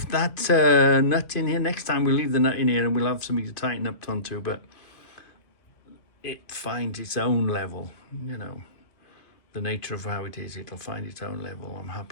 that nut in here. Next time we'll leave the nut in here and we'll have something to tighten up onto, but it finds its own level, you know. The nature of how it is, it'll find its own level. I'm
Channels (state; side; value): late; right; 2.5 ms